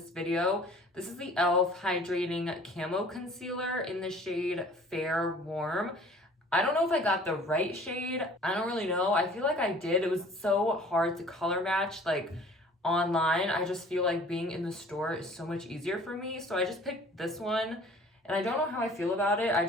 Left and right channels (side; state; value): both; normal; correlation 0.50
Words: video. This is the e.l.f. Hydrating Camo Concealer in the shade Fair Warm. I don't know if I got the right shade. I don't really know. I feel like I did. It was so hard to color match like online. I just feel like being in the store is so much easier for me. So I just picked this one and I don't know how I feel about it. I